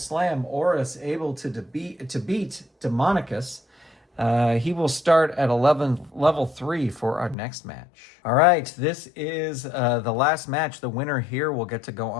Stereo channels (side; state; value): right; drops out; at 7.4 s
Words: Oris able to beat Demonicus. He will start at level 3 for our next match. All right, this is the last match. The winner here will get to go